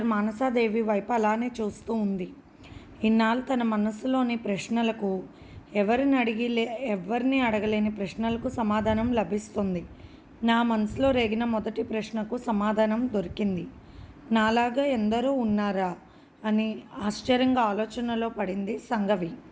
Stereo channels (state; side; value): identical; both; correlation 1.00